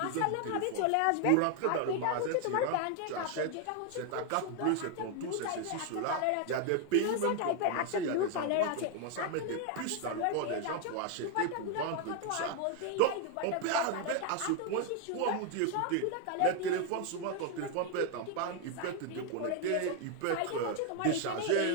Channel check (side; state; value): both; different; correlation 0.00